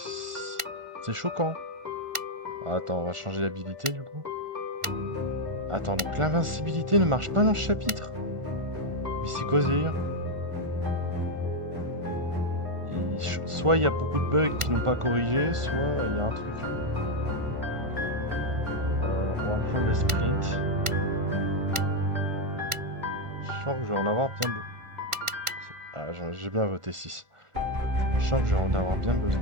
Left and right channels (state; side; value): late; left; 1.4 ms